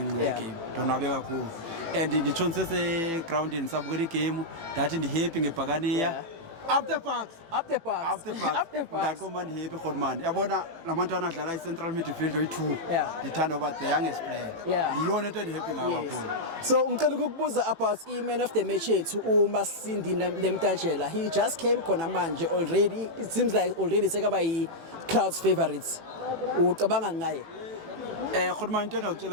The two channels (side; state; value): left; late; 18 ms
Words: game. Ndonwabe kakhulu. And nditshonse se ground nisabukela igame, ndathi ndihappy ngebhakaniya. Up the parks. Ndakho happy khona man. Yabona lamantwana adlala i-central midfield oyi2. Ndithanda over the youngest player. Ndiyona into endihappy ngayo kakhulu. So ngicela ukukubuza about i-man of the match yethu uMasindi Nemtajela. He just came khona manje already. It seems like already sekaba yi-crowd's favorites. Ucabanga ngaye? Khona man into